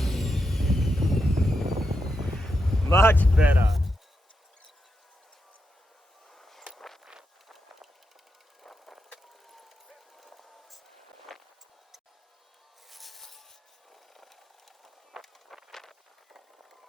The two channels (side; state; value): both; normal; correlation 0.85